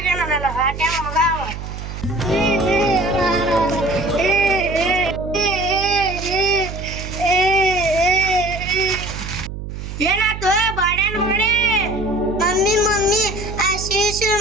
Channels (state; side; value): noise; right; hum, 8 dB below the sound